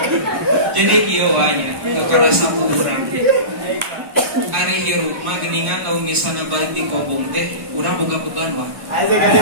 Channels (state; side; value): late; left; 1.4 ms